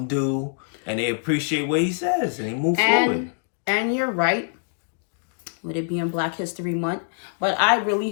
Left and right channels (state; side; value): silent; right; digital silence